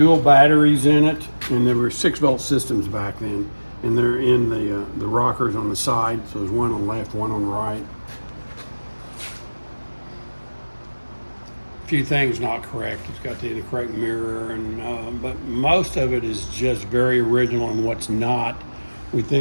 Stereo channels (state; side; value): inverted; both; correlation -1.00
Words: batteries in it, and there were 6-volt systems back then, and they're in the rockers on the side. So there's one on the left, one on the right. A few things not correct. It's got the correct mirror, and but most of it is just very original, and what's not, we